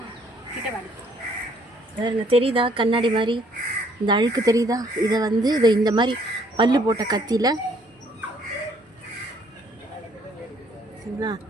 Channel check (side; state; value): both; normal; correlation 0.64